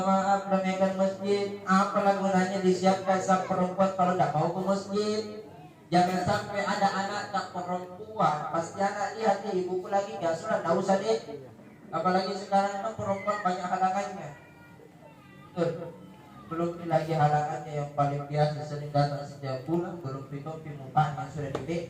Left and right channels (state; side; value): identical; both; correlation 1.00